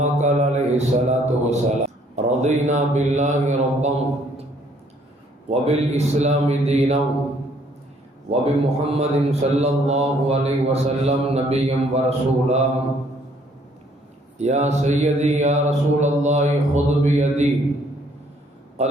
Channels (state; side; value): normal; both; correlation 0.63